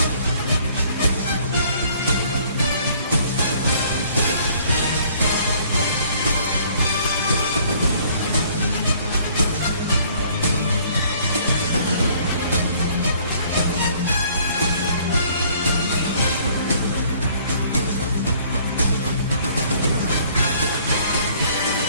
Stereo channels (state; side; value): inverted; both; correlation -0.59